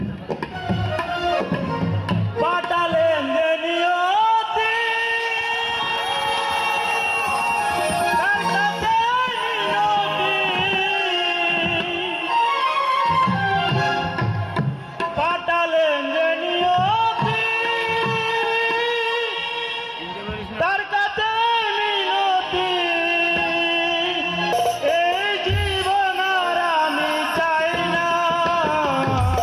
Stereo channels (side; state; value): both; identical; correlation 1.00